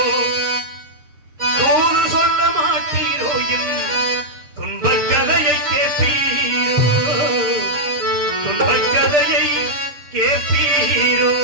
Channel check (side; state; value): left; late; 6.7 ms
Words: தூது சொல்ல மாட்டீரோ, என் துன்பக் கதையை கேட்பீரோ, துன்பக் கதையை கேட்பீரோ.